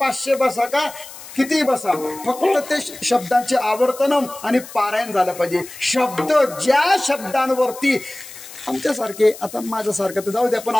बसा का किती बसा, फक्त ते शब्दांचे आवर्तन आणि पारायण झालं पाहिजे. शब्द ज्या शब्दांवरती आमच्यासारखे, आता माझ्यासारखं तर जाऊ द्या, पण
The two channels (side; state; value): left; noise; hiss, 16 dB below the sound